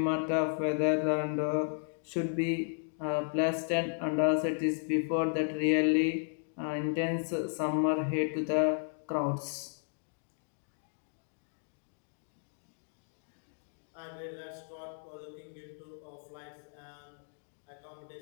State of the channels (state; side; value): silent; right; digital silence